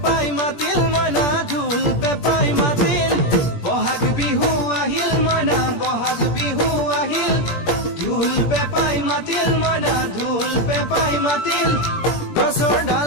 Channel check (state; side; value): late; right; 17 ms